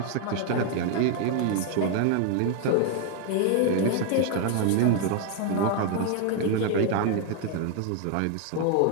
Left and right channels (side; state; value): both; different; correlation 0.01